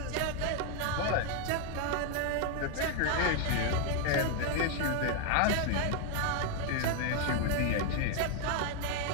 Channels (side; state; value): both; different; correlation 0.01